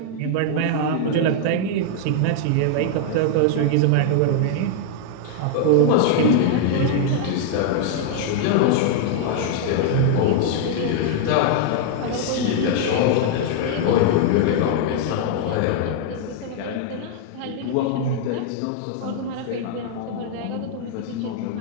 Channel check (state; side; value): different; both; correlation 0.00